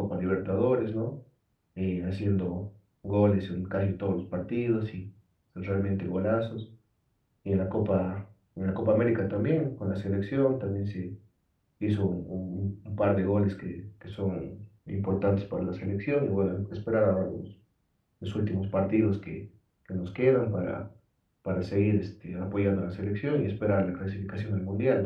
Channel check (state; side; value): identical; both; correlation 1.00